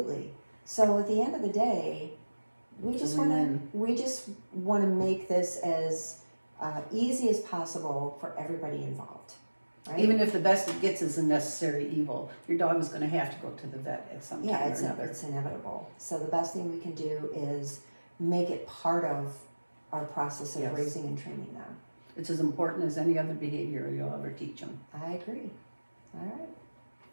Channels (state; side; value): inverted; both; correlation -1.00